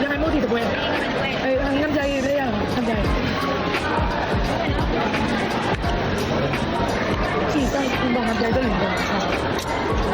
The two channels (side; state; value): both; identical; correlation 1.00